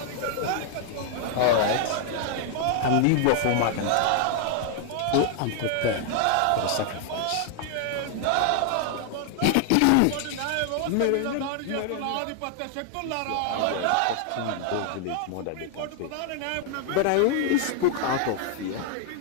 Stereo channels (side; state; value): both; different; correlation 0.00